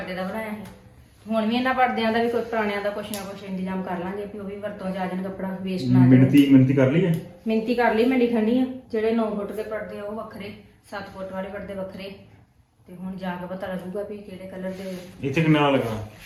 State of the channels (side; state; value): both; identical; correlation 1.00